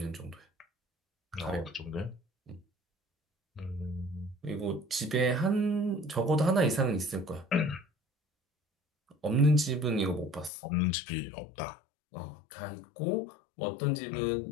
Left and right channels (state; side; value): drops out; right; at 10.5 s